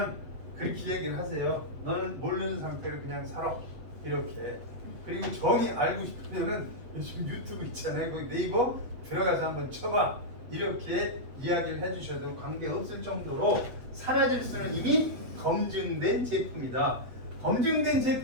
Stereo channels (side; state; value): left; late; 8.1 ms